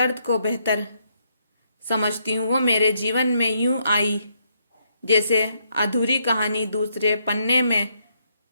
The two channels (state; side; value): inverted; both; correlation -0.75